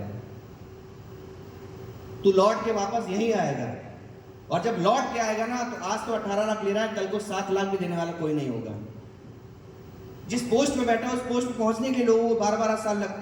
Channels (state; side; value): identical; both; correlation 1.00